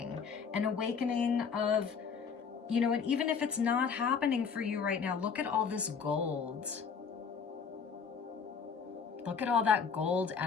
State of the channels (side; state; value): right; quieter; 6.1 dB